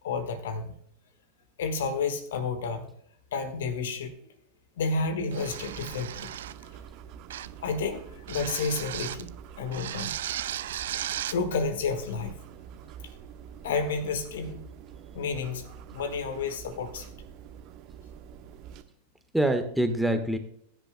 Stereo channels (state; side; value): normal; both; correlation -0.08